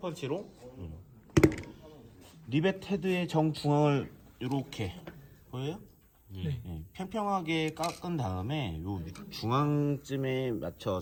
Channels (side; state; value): both; identical; correlation 1.00